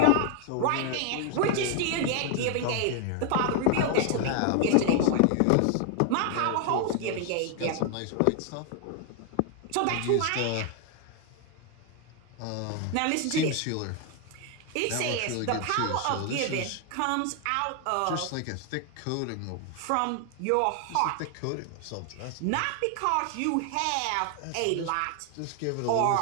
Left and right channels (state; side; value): different; both; correlation 0.00